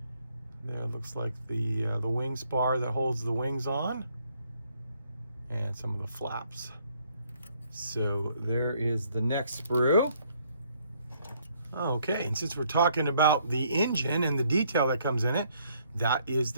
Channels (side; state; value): both; inverted; correlation -0.67